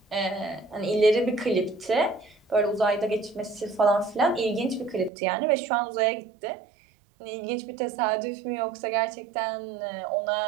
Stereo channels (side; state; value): left; drops out; at 5.1 s